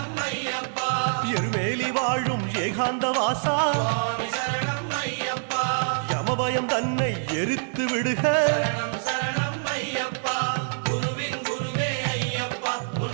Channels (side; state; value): left; silent; 58 dB below the other